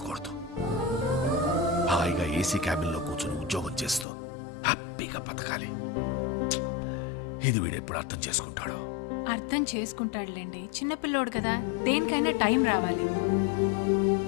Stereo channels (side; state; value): right; drops out; at 4.0 s